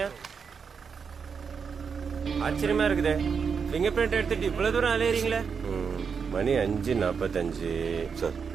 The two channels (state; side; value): quieter; left; 6.1 dB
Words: ஆச்சரியமா இருக்குதே, ஃபிங்கர் பிரிண்ட் எடுத்துட்டு இவ்வளவு தூரம் அலையறீங்களே. மணி 5:45. சார்